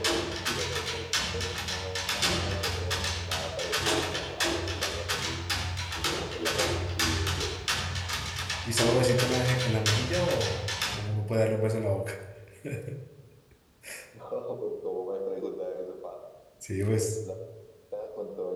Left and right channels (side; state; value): both; identical; correlation 1.00